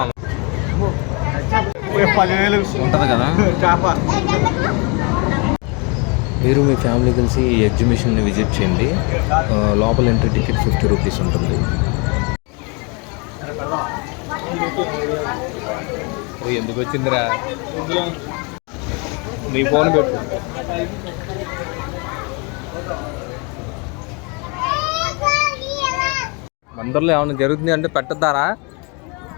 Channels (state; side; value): quieter; right; 31.8 dB